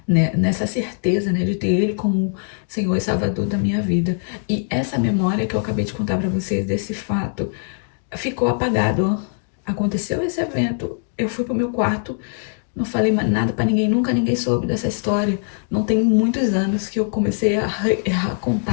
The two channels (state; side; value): silent; right; digital silence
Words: né, nessa certeza, né, de ter Ele como Senhor e Salvador da minha vida. E essa memória que eu acabei de contar para vocês desse fato ficou apagado. Aconteceu esse evento, eu fui pro meu quarto, não falei mais nada para ninguém, nunca ninguém soube dessa história. Não tem muitos anos que eu comecei a